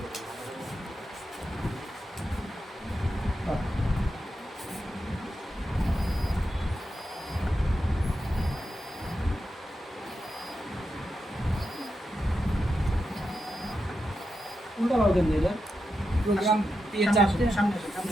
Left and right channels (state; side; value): normal; both; correlation 0.87